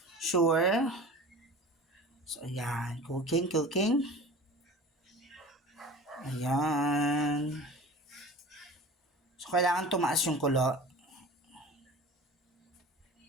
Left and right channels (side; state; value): both; normal; correlation 0.38